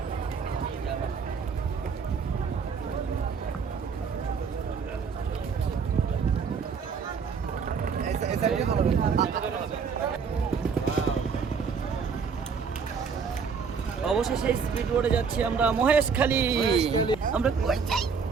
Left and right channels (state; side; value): quieter; left; 5.8 dB